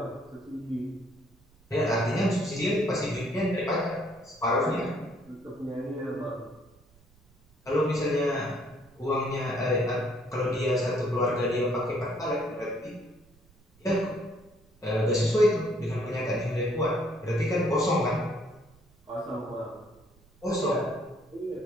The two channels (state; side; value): noise; right; rumble, 29 dB below the sound